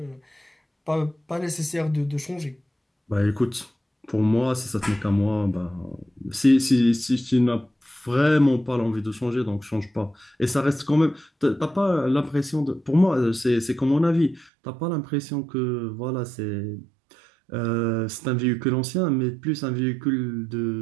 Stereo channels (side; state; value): left; drops out; at 14.5 s